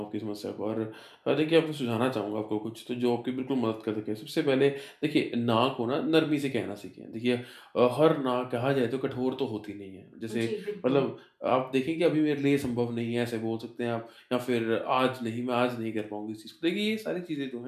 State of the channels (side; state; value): both; identical; correlation 1.00